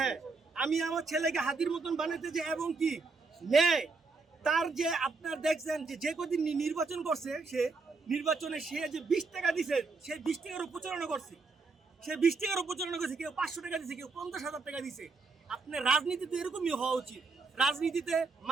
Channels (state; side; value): quieter; left; 4.2 dB